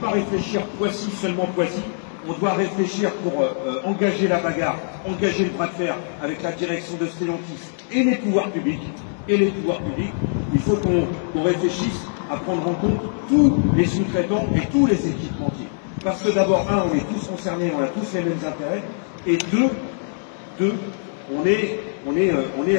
réfléchir Poissy, seulement Poissy. On doit réfléchir pour engager la bagarre, engager le bras de fer avec la direction de Stellantis et les pouvoirs publics. Il faut qu'on réfléchisse à prendre en compte tous les sous-traitants et tous les équipementiers. Parce que d'abord, un, on est tous concernés, on a tous les mêmes intérêts, et deux, on est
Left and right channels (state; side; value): silent; right; digital silence